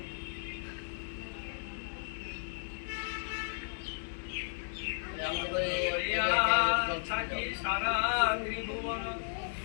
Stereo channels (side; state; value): right; silent; digital silence